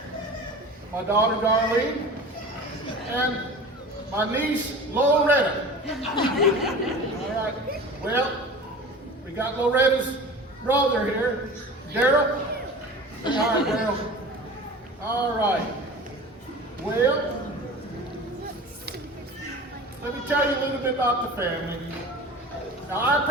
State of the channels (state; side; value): normal; both; correlation 0.37